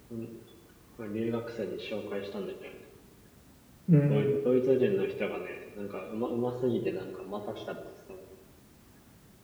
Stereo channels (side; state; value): both; identical; correlation 1.00